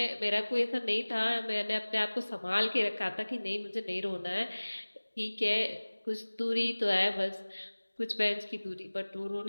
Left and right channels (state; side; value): inverted; both; correlation -1.00